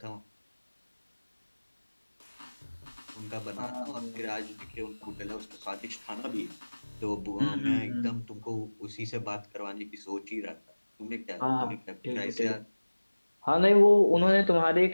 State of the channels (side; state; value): both; inverted; correlation -1.00